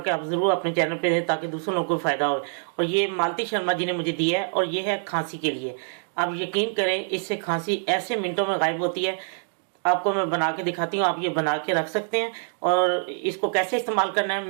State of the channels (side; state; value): left; silent; digital silence